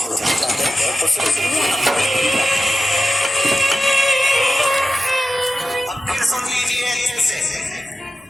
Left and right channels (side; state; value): both; normal; correlation 0.92